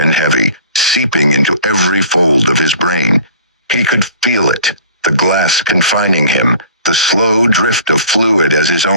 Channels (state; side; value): inverted; both; correlation -0.46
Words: heavy, seeping into every fold of his brain. He could feel it, the glass confining him, the slow drift of fluid as his